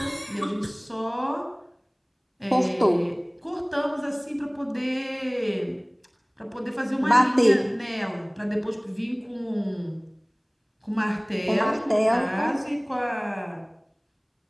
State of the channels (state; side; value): identical; both; correlation 1.00